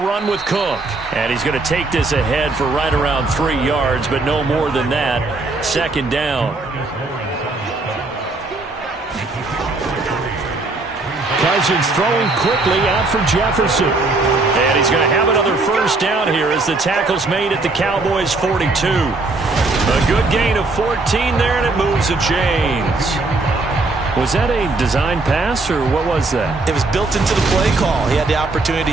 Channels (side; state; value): left; quieter; 3.3 dB